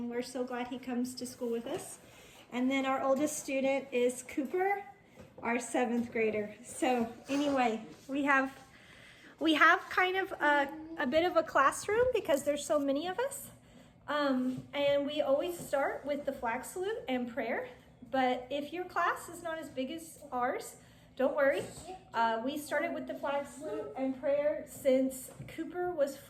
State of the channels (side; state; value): both; identical; correlation 1.00